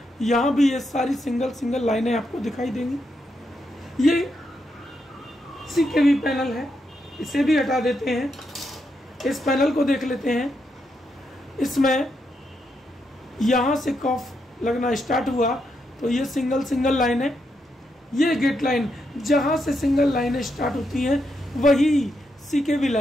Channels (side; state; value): both; normal; correlation 0.81